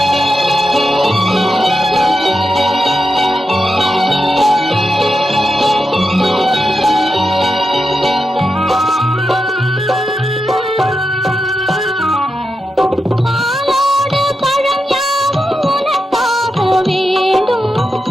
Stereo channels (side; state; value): both; normal; correlation 0.88